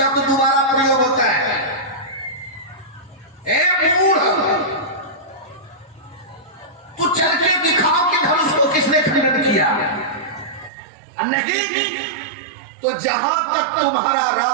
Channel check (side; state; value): left; drops out; at 10.7 s